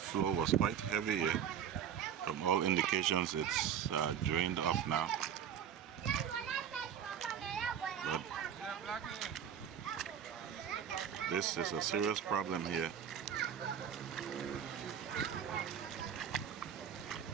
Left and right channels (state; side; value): quieter; left; 8.7 dB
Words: was quite heavy here. From all indications, it's drained off now. But this is a serious problem here.